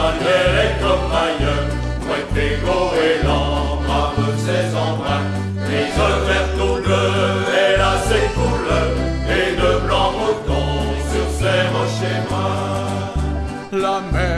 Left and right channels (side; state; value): both; identical; correlation 1.00